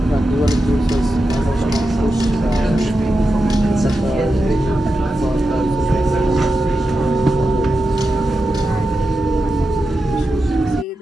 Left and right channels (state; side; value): normal; both; correlation 0.90